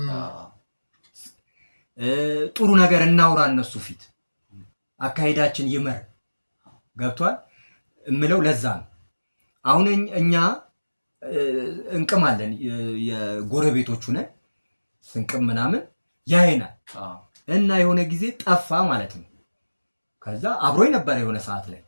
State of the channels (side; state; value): both; inverted; correlation -1.00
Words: ጥሩ ነገር እናውራ እነሱ ፊት አካይዳችን ይመር ገብቷል እምለው ለዛ ነው አሁን እኛ እንቅማለን የጎረቤቶቹ ነን ስንቅም ምናምን ያይናል እና የሆነ ጊዜ ጠፋ ማለት ነው ከዛ አብሮኝ ነበር የሆነ ሰዓት ላይ